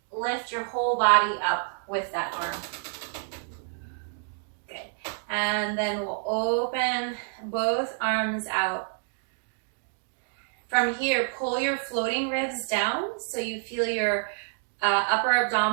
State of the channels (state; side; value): silent; left; digital silence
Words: lift your whole body up with that arm. Good, and then we'll open both arms out. From here, pull your floating ribs down so you feel your upper